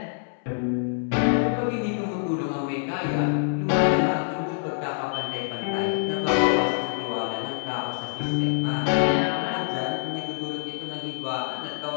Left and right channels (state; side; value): silent; right; 61 dB below the other